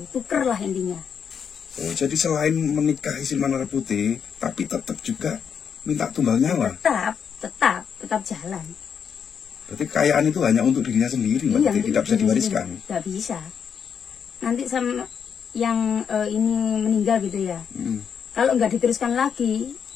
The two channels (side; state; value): right; quieter; 7.2 dB